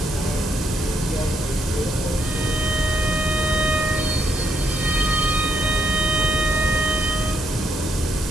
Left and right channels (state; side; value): normal; both; correlation 0.76